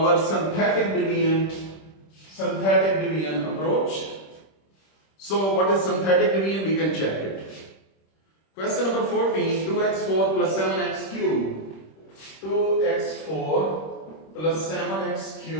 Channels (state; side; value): late; right; 26 ms